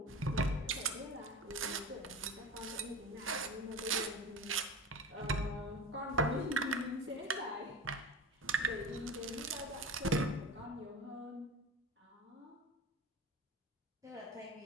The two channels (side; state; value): both; normal; correlation 0.31